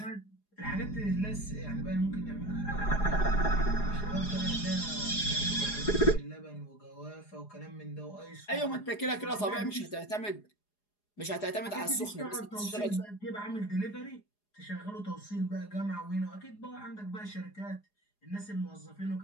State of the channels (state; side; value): late; right; 4.8 ms